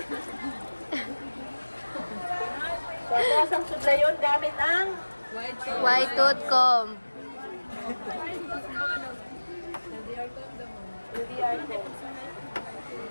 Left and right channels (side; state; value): both; inverted; correlation -1.00